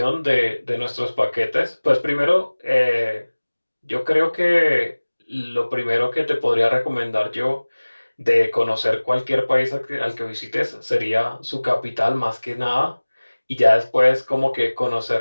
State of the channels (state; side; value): inverted; both; correlation -1.00